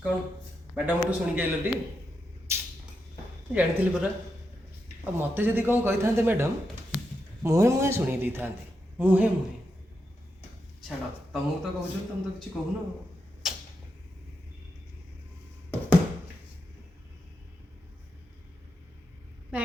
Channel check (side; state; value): both; normal; correlation 0.85